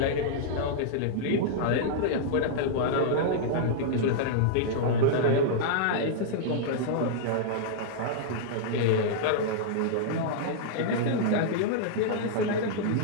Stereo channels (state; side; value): different; both; correlation -0.02